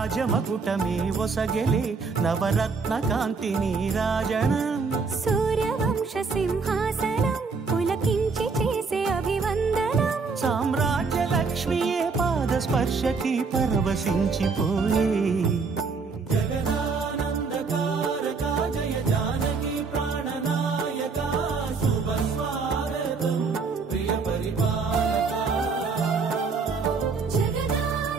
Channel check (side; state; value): left; quieter; 4.7 dB